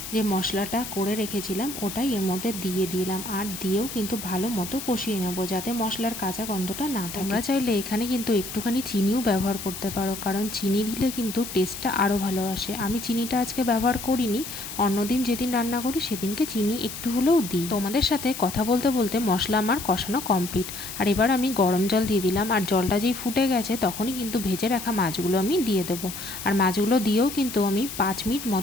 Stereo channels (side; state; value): left; noise; hiss, 9 dB below the sound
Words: যে মশলাটা করে রেখেছিলাম ওটাই এর মধ্যে দিয়ে দিলাম, আর দিয়েও কিন্তু ভালো মতো কষিয়ে নেব, যাতে মশলার কাঁচা গন্ধটা না থাকে। তোমরা চাইলে এখানে কিন্তু একটুখানি চিনিও ব্যবহার করতে পারো, কারণ চিনি দিলে কিন্তু টেস্টটা আরও ভালো আসে। আমি চিনিটা আজকে ব্যবহার করিনি, অন্যদিন যেদিন রান্না করি সেদিনকে চিনি একটু হলেও দিই। তোমাদের সাথে কথা বলতে বলতে মশলা আমার কষানো কমপ্লিট। আর এবার আমি গরম জল দিয়ে দিলাম, আর জলটা যেই ফুটে গেছে তখনই কিন্তু ভেজে রাখা মাছগুলো আমি দিয়ে দেবো। আর মাছগুলো দিয়েও কিন্তু আমি 5 মিনিট